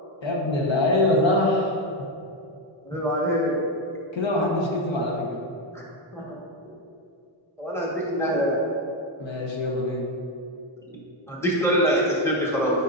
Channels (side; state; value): both; normal; correlation 0.07